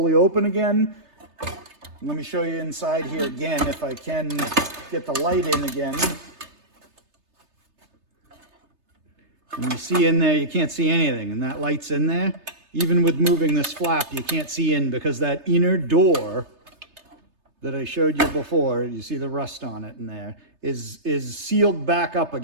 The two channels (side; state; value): left; late; 3.3 ms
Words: open again. Let me show you inside here again if I can get the light in again. And you see in there, you can't see anything, and that light's in there. Even with moving this flap, you can't see in because that inner door that I showed you before, you see the rust on it in there, is sealed back up